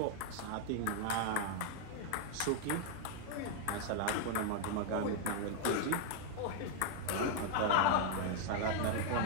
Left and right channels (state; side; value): different; both; correlation 0.00